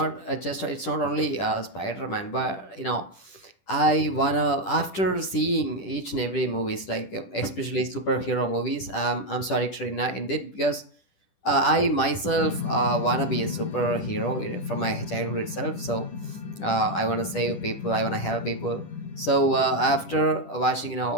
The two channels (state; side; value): late; right; 10 ms